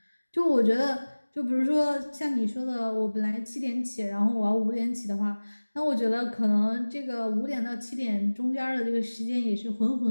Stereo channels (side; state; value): both; inverted; correlation -1.00